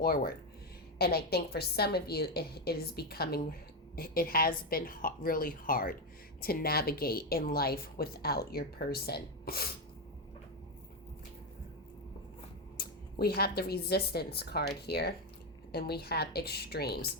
And I think for some of you, it has been really hard to navigate in life without your person. We have the Resistance card here, and we have extremes.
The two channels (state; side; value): normal; both; correlation 0.08